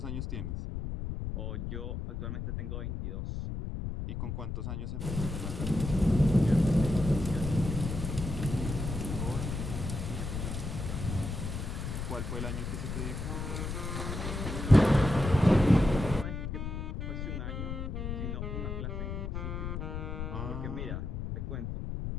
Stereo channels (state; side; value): noise; left; rumble, 4 dB below the sound